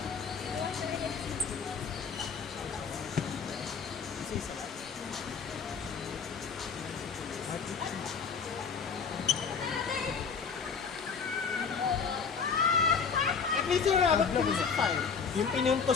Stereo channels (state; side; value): quieter; right; 5.9 dB